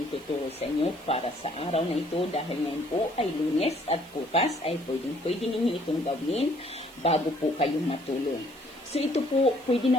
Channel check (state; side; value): noise; right; hiss, 24 dB below the sound